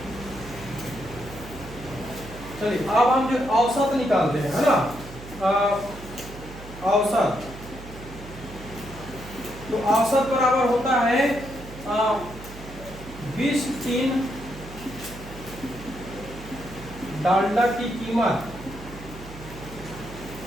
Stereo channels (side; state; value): right; noise; hum, 15 dB below the sound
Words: चलिए अब हम जो औसत निकालते हैं, है ना। औसत, तो औसत बराबर होता है 20 टीन डालडा की कीमत,